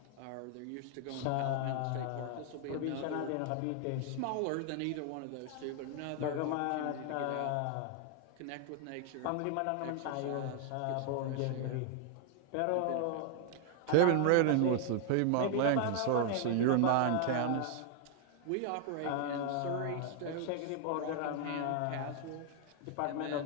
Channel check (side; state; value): both; different; correlation 0.00